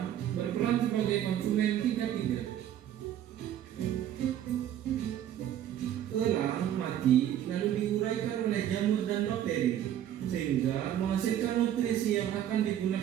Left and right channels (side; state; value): left; quieter; 10.9 dB